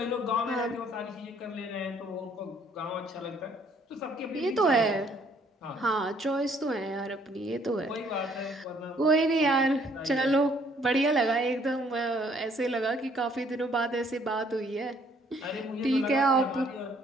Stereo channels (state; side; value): normal; both; correlation 0.63